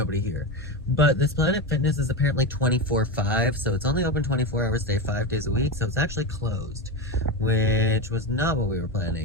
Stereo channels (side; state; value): both; normal; correlation 0.16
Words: here. But this Planet Fitness is apparently 24/5, so it's only open 24 hours a day, 5 days a week, so it's actually closed, which was not what we were